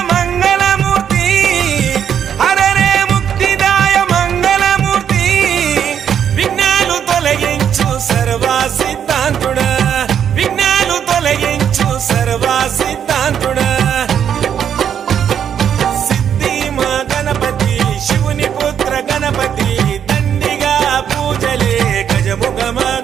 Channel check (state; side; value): quieter; left; 8.6 dB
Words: మంగళమూర్తి హరరే ముక్తిదాయ మంగళమూర్తి విఘ్నాలు తొలగించు సర్వసిద్ధ